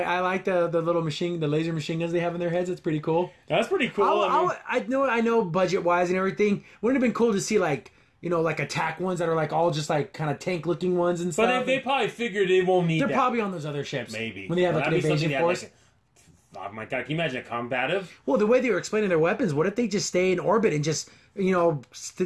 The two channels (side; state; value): both; identical; correlation 1.00